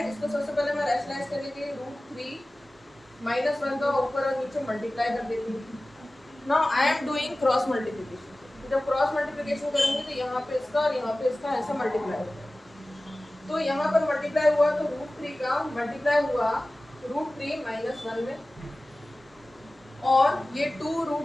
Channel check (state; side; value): normal; both; correlation 0.97